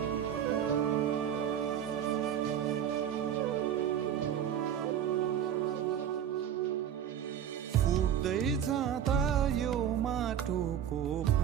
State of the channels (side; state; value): left; quieter; 9.5 dB